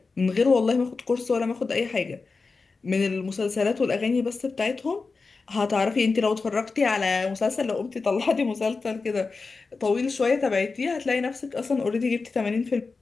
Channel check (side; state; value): right; quieter; 4.2 dB